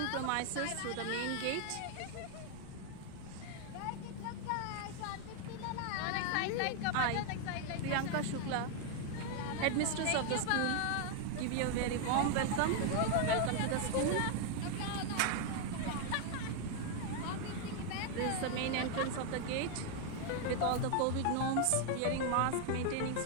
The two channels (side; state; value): both; different; correlation 0.00